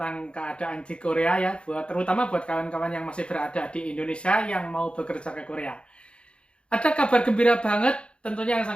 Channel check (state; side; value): late; right; 0.057 ms